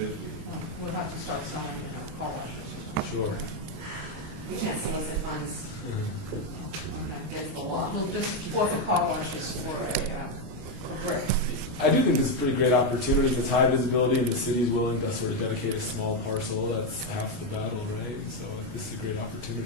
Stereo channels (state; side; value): late; left; 21 ms